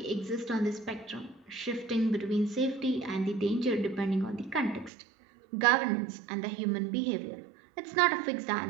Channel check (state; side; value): drops out; left; at 4.9 s